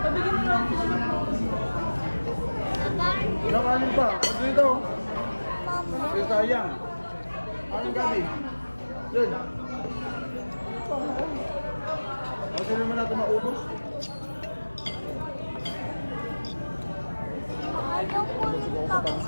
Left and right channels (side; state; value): both; inverted; correlation -1.00